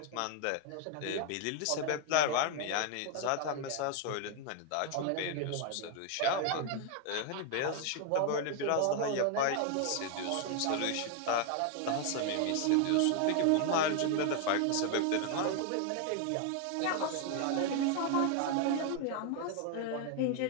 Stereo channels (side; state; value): both; different; correlation 0.00